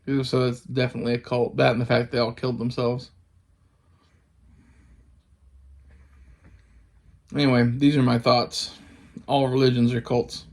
So that's definitely a cult. That and the fact they all killed themselves. Anyway, these are my thoughts. All religions are cults.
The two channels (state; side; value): identical; both; correlation 1.00